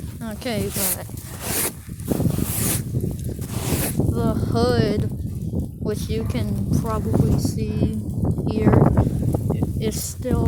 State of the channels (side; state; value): both; identical; correlation 1.00